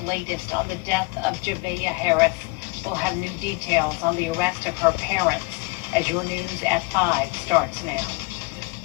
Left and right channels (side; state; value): right; quieter; 26.7 dB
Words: latest on the death of Javea Harris. We'll have new details on the arrest of her parents as your news at 5 starts now.